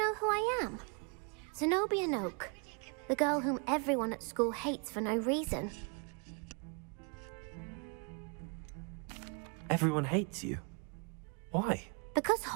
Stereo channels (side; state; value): left; quieter; 36.6 dB